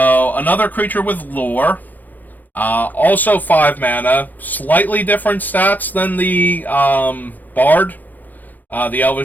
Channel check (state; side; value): late; right; 0.084 ms